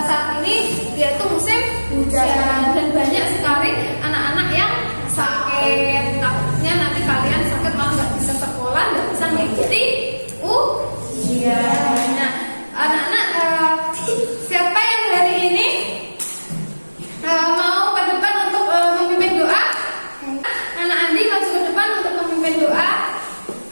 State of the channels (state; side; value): inverted; both; correlation -1.00